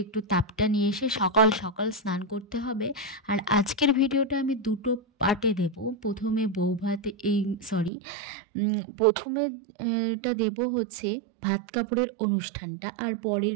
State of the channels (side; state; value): left; drops out; at 7.9 s